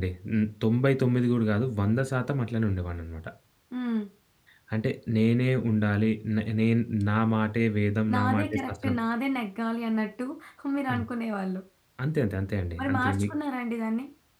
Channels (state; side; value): identical; both; correlation 1.00